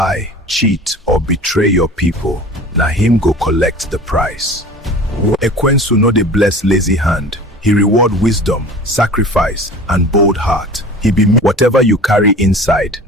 cheat, or betray your people, na him go collect the price. Ekwensu no dey bless lazy hand. He reward wisdom, sacrifice, and bold heart. He be whatever you carry inside,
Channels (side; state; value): both; normal; correlation 0.40